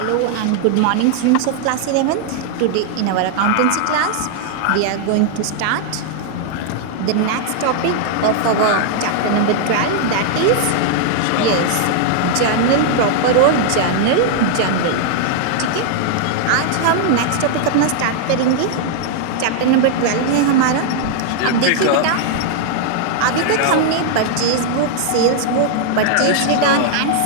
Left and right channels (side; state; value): both; different; correlation -0.01